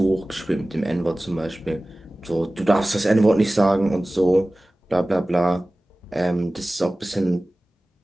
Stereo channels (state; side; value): normal; both; correlation 0.97